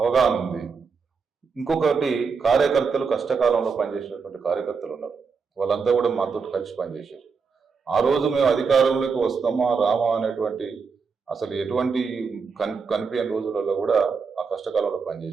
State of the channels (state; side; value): quieter; left; 5.4 dB